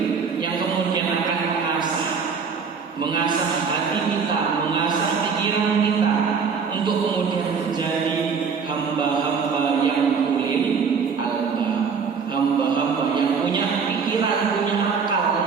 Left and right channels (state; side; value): quieter; left; 5.8 dB